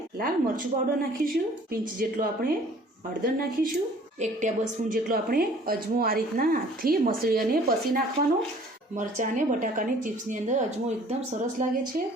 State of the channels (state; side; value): normal; both; correlation 0.53